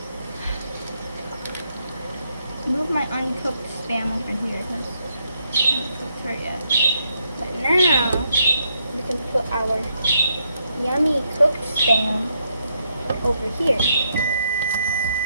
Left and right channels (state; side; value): inverted; both; correlation -0.77